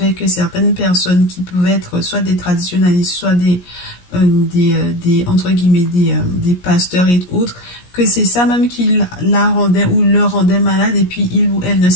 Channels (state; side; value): late; right; 17 ms